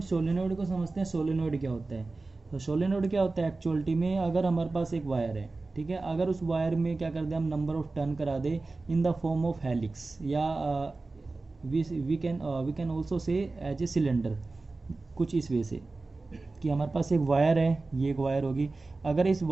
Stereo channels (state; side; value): quieter; left; 3.5 dB